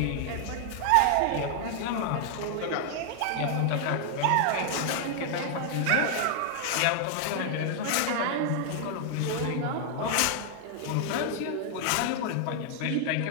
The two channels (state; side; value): different; both; correlation 0.00